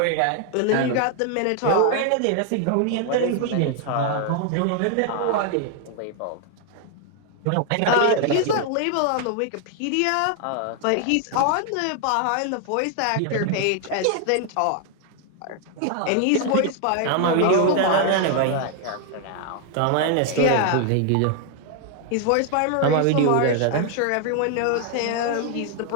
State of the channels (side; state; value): both; different; correlation 0.00